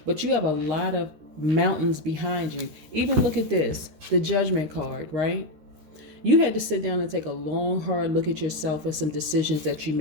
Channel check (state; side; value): late; left; 13 ms